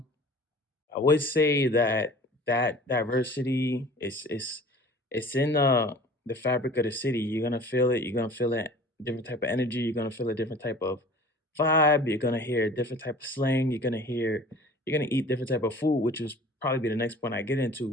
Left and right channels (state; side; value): normal; both; correlation 0.45